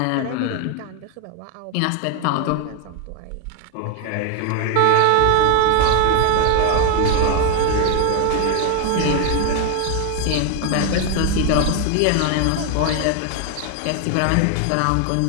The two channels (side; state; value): both; different; correlation 0.01